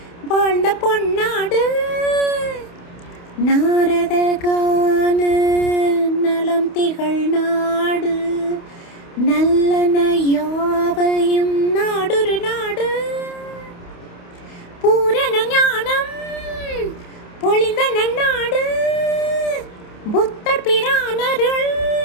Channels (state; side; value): late; right; 28 ms